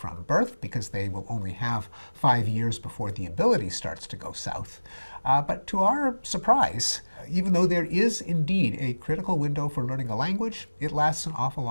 birth, because they will only have 5 years before the ability starts to go south. But to our surprise, even though there is indeed a critical window for learning a language, it lasts an awful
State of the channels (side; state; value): both; inverted; correlation -1.00